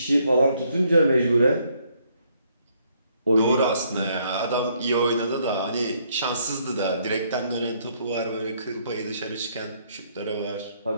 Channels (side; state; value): both; inverted; correlation -0.70